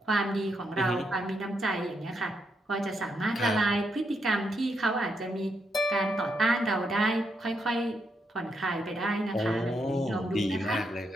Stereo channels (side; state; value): both; normal; correlation 0.79